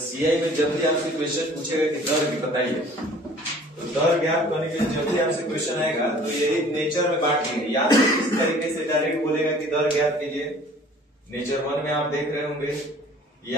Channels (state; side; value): normal; both; correlation 0.50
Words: में जब भी आपसे क्वेश्चन पूछेगा कि दर बताइए, तो दर ज्ञात करने के लिए जब भी आपसे क्वेश्चन आएगा तो यही नेचर में बांट लेंगे, या तो इस तरीके से डायरेक्ट बोलेगा कि दर ज्ञात कीजिए, नेचर 1 में आप देख रहे होंगे,